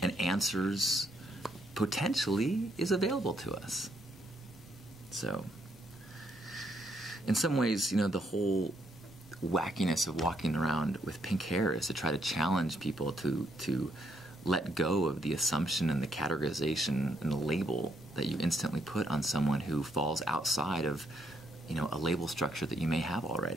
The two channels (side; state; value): both; normal; correlation 0.74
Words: and answers potentially is available to us. So, in some ways, the whole wackiness of walking around with pink hair is to try to challenge people to let go of the assumption and the categorization and the label that you instantly put on someone who falls outside of, a label structure that you may have